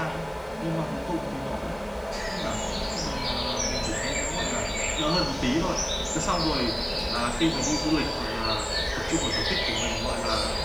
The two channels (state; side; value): noise; right; hiss, 28 dB below the sound